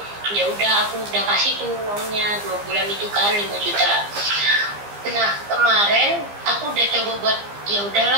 Ya udah aku udah kasih tuh uangnya 2 bulan itu kan 5 juta. Nah kemarin aku udah coba buat ya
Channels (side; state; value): left; late; 15 ms